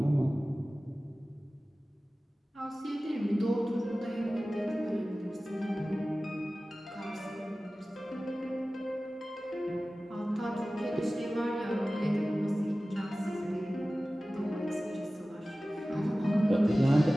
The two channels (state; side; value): normal; both; correlation 0.97